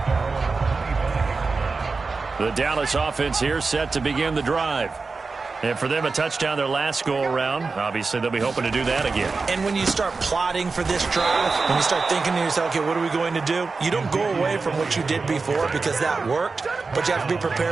The Dallas offense here set to begin the drive. And for them, a touchdown their last go-around. Obviously, they'll be hoping to do that again. And when you start plotting for this drive, when you start thinking to yourself, okay, what are we going to do? You don't go away from what you did before because that worked, but you have to be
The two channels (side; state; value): left; quieter; 4.2 dB